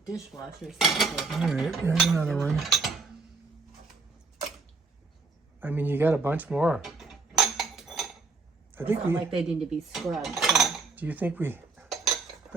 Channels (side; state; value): left; quieter; 4.1 dB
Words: All right, here's another one. I mean, you got a bunch more. I think we... like they need to be scrubbed. So. Do you think we... I